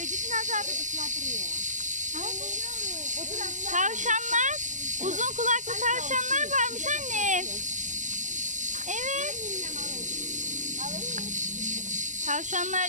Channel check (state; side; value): late; left; 0.35 ms